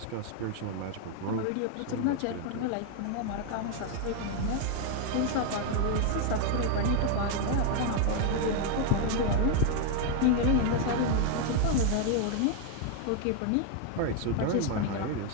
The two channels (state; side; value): different; both; correlation 0.00